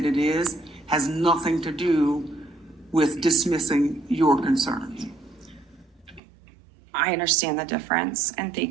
it is, has nothing to do with dismissing your concerns. I understand the difference, and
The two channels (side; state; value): left; drops out; at 6.2 s